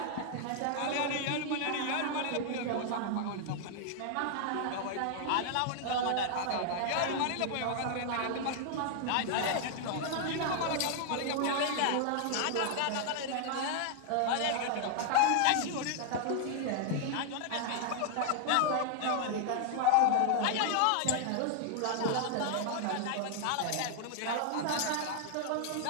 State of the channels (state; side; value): different; both; correlation 0.00